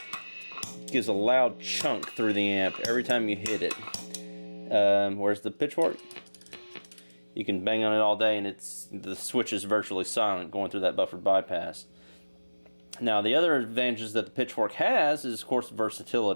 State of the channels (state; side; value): inverted; both; correlation -1.00